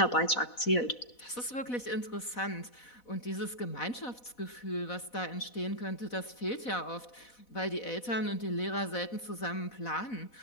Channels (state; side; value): late; right; 4.1 ms